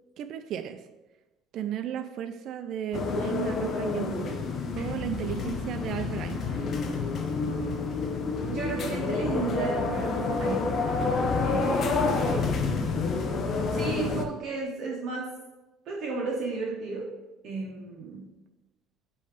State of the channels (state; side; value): normal; both; correlation 0.53